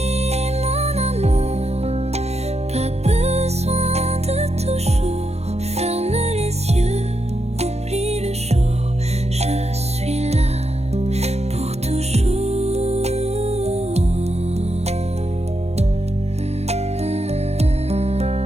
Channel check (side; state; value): left; late; 0.31 ms